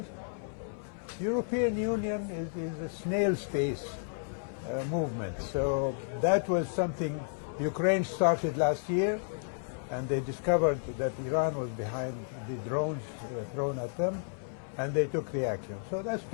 European Union is a snail's pace movement. So that was something Ukraine started last year, and they discovered that Iran was behind the drones thrown at them, and they took the action. So that's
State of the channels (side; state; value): right; silent; 56 dB below the other